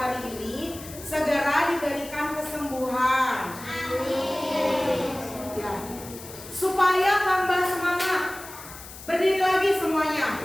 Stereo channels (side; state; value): left; noise; hiss, 15 dB below the sound